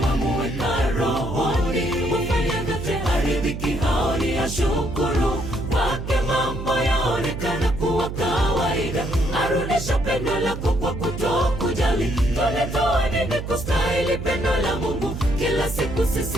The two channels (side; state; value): right; noise; hum, 7 dB below the sound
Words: wamuweka rohoni, hufanya vyote haridhiki, haoni ashukuru. Kwake mambo yaonekana kuwa kawaida, arudisha pendo lako kwa kutokujali. Tulitoa nini kustahili pendo la Mungu? Kila siku